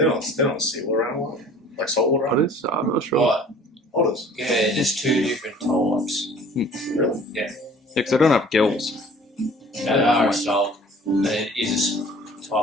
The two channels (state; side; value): normal; both; correlation 0.49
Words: not a seawater animal. Like saltwater animal? Otters? I'm not sure. What? Otters. Yeah, there's two different types. Really? Yeah. Because they don't have gills. They are salt. It is a type